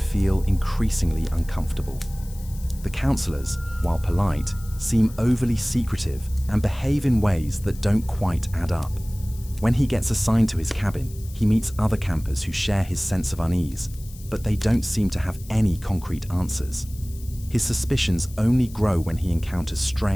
increasingly uncomfortable. The counselors, while polite, seem overly secretive and behave in ways that don't quite add up. When he gets assigned to his cabin, he meets other campers who share his sense of unease, but they don't seem to have any concrete answers. His suspicions only grow when he encounters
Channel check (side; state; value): left; noise; hiss, 20 dB below the sound